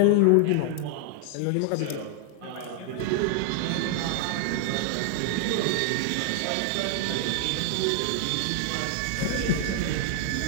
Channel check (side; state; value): both; different; correlation 0.00